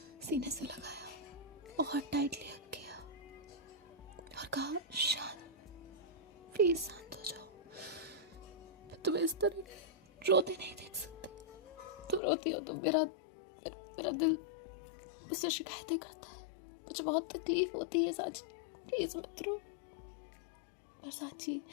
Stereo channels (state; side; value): drops out; right; at 12.2 s